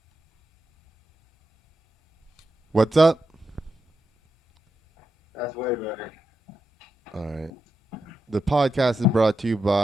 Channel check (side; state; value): both; normal; correlation 0.87